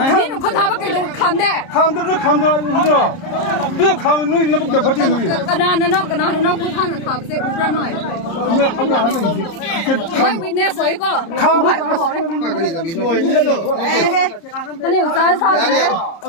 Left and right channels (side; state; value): right; late; 30 ms